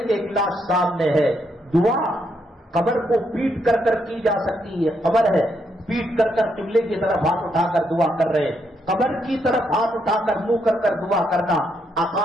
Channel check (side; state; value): both; normal; correlation 0.77